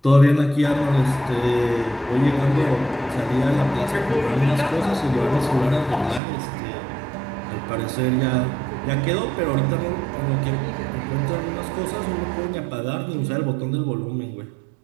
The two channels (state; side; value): drops out; left; at 6.2 s